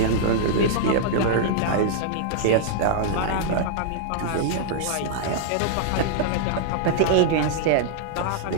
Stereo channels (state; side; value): different; both; correlation -0.01